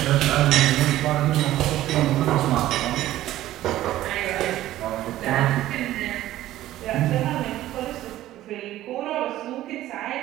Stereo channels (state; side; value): quieter; left; 14.4 dB